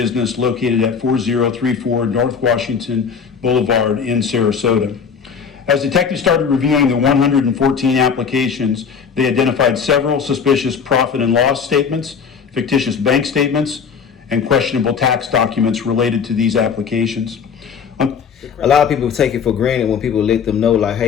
located at 4034 North Washington Boulevard in Sarasota. As detectives started reviewing the 114 applications, they identified several suspicious profit and loss statements, fictitious bank statements, and questionable tax documents related to these applications. A lot of people take it for granted when people let them know, like,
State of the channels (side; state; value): right; quieter; 6.4 dB